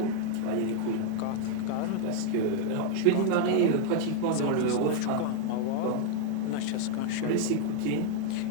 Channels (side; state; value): both; different; correlation 0.01